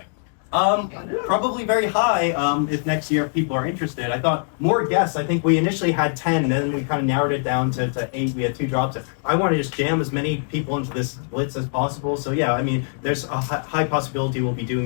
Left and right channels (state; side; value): silent; right; digital silence